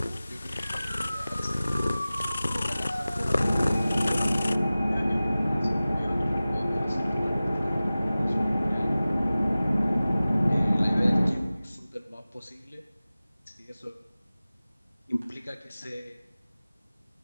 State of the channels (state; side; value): inverted; both; correlation -0.97